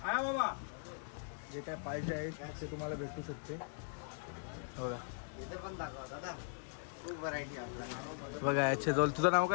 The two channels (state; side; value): silent; right; digital silence